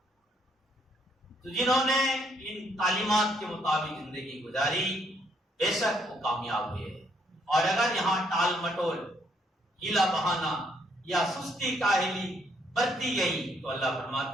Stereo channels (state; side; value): normal; both; correlation 0.71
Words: تو جنہوں نے ان تعلیمات کے مطابق زندگی گزاری بے شک وہ کامیاب ہوئے، اور اگر یہاں ٹال مٹول، ہیلا بہانا یا سستی کاہلی برتی گئی تو اللہ